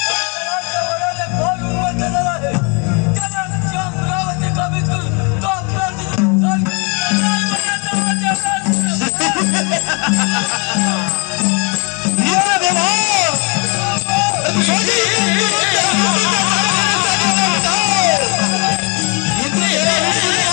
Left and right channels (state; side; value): quieter; right; 33.0 dB